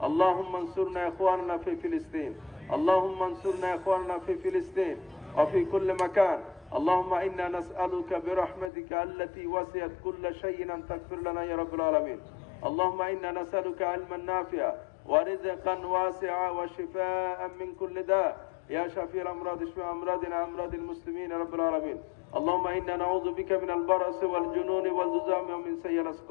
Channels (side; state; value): right; drops out; at 8.7 s